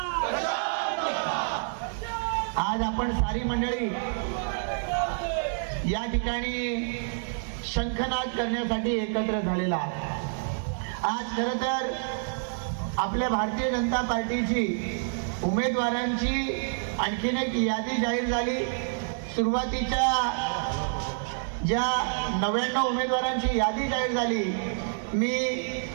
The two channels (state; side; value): silent; left; 59 dB below the other